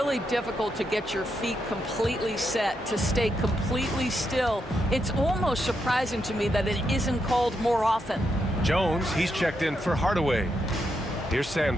difficult to get your feet completely set, to stay completely still. It's almost surprising to me that it isn't called more often. Jones, he's checked in for Hardaway. Here's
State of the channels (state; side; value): normal; both; correlation 0.82